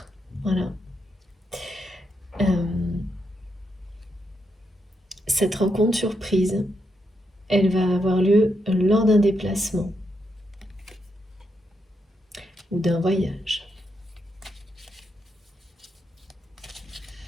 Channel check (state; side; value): normal; both; correlation 0.81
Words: Voilà. Euh, cette rencontre surprise, elle va avoir lieu lors d'un déplacement ou d'un voyage.